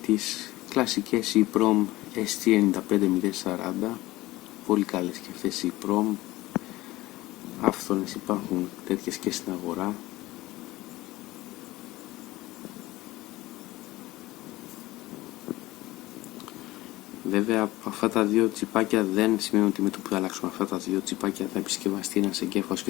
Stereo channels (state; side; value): quieter; right; 18.4 dB